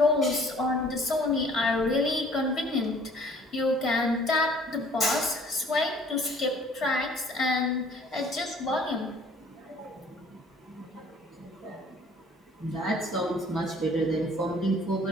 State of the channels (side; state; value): both; normal; correlation 0.55